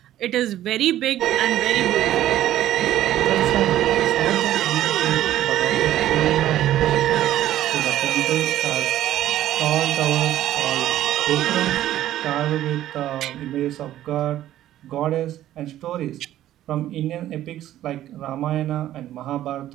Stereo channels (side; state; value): left; quieter; 13.1 dB